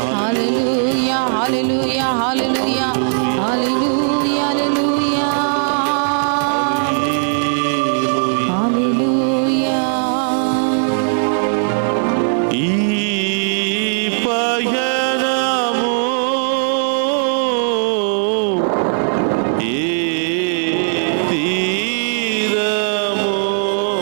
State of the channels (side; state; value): left; silent; digital silence